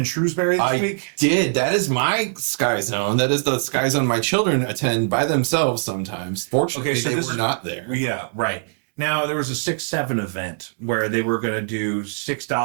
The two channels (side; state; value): left; silent; digital silence